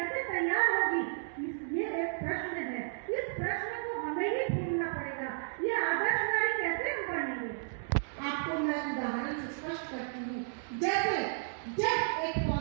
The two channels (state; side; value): silent; left; digital silence